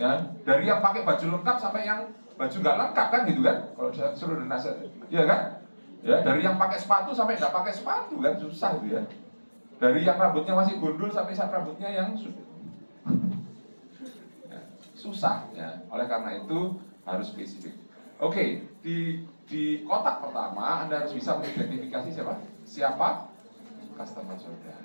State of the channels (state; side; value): inverted; both; correlation -1.00